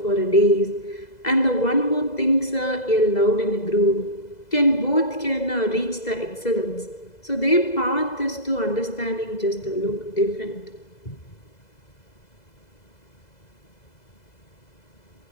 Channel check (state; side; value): late; right; 2.0 ms